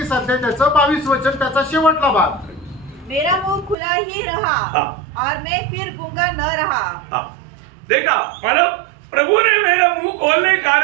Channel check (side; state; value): left; drops out; at 3.8 s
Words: अध्याय त्याचं 22 वचन त्याचा शेवटला भाग। मेरा मुंह खुला ही रहा और मैं फिर गूंगा न रहा। देखा, मतलब प्रभु ने मेरा मुंह खोलने के